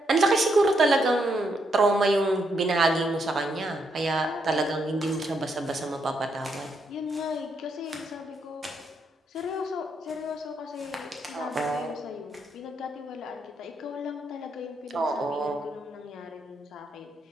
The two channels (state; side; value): normal; both; correlation 0.78